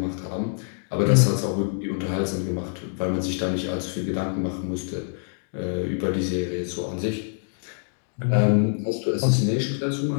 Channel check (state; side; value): silent; right; digital silence